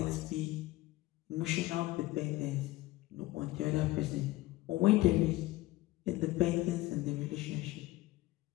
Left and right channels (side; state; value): right; quieter; 18.1 dB